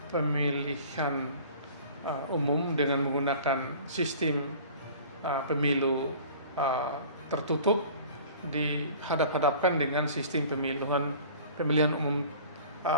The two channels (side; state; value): both; inverted; correlation -0.45